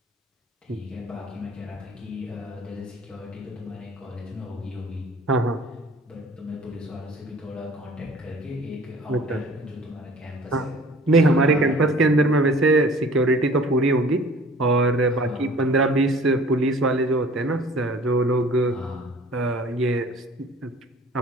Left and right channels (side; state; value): both; normal; correlation 0.49